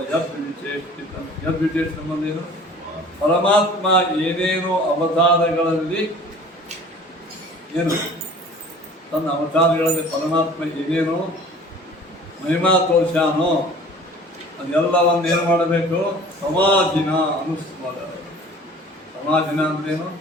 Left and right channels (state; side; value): normal; both; correlation 0.46